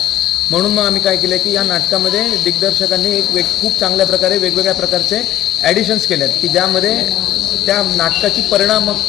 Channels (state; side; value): quieter; right; 13.0 dB